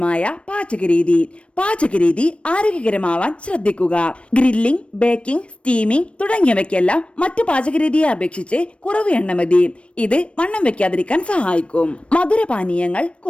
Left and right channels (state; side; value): late; right; 0.060 ms